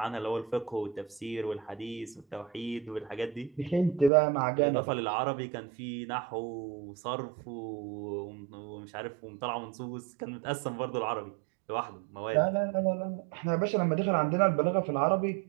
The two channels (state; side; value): drops out; left; at 4.1 s